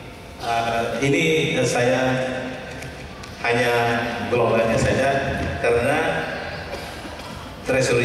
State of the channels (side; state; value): both; identical; correlation 1.00